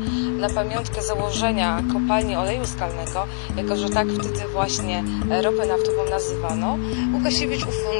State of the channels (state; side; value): silent; right; 58 dB below the other